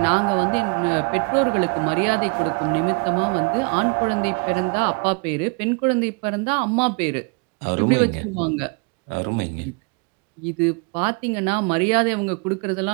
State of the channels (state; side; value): quieter; left; 33.8 dB